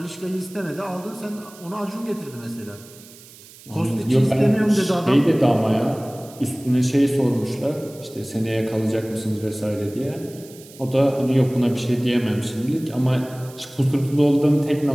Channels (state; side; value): noise; right; hiss, 21 dB below the sound